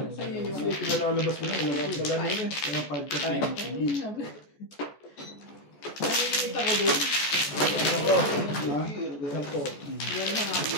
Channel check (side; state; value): right; late; 14 ms